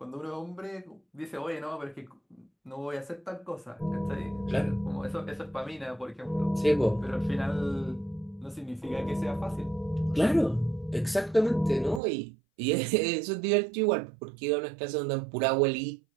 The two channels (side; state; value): left; drops out; at 12.0 s